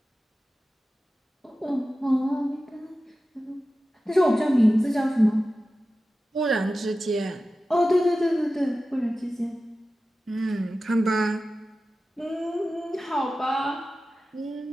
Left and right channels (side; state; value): both; normal; correlation 0.94